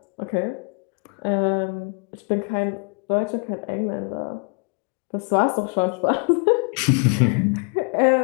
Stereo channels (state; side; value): quieter; right; 39.8 dB